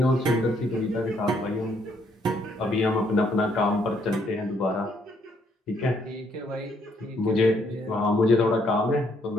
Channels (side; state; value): both; normal; correlation 0.70